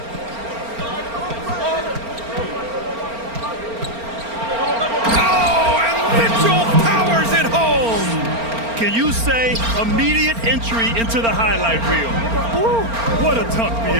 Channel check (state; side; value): late; left; 4.4 ms